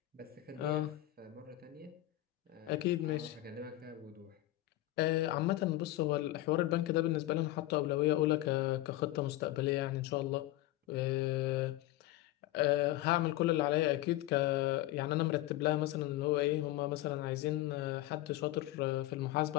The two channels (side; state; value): right; quieter; 16.1 dB